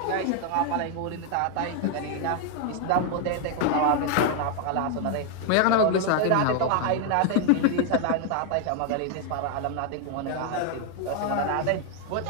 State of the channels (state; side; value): different; both; correlation 0.00